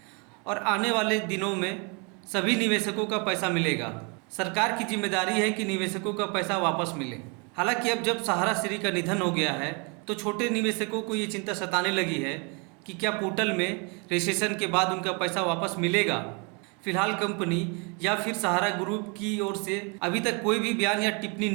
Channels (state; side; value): quieter; left; 33.1 dB